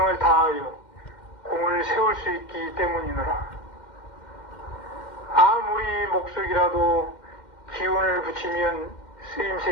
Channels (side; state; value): right; late; 2.1 ms